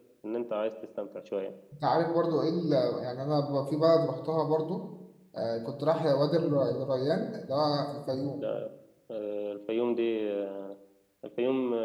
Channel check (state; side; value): identical; both; correlation 1.00